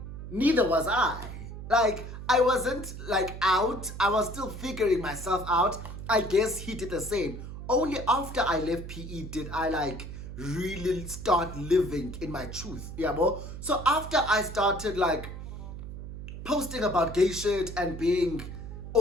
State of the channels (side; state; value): right; noise; hum, 10 dB below the sound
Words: neither was I. Like, I wasn't like out, I was still figuring myself out. I guess he did the same. Only after I left PE did I like really start living in my truth. Yeah, bro. So after I started like posting about gay shit and being